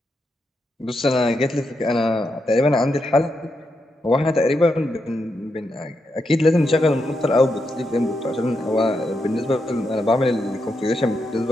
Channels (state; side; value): normal; both; correlation 0.84